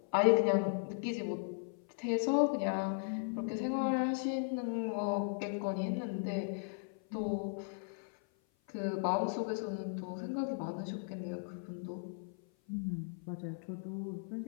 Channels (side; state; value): right; silent; 53 dB below the other